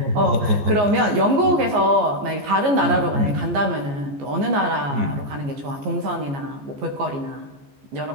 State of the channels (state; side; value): late; left; 14 ms